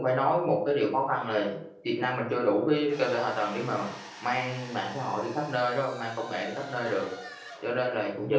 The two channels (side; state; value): both; identical; correlation 1.00